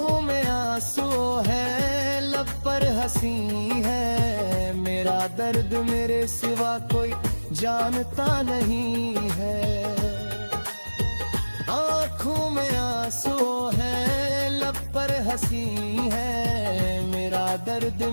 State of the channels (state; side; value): inverted; both; correlation -1.00